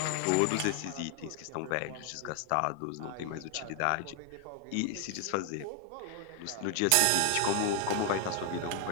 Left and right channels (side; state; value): both; different; correlation 0.00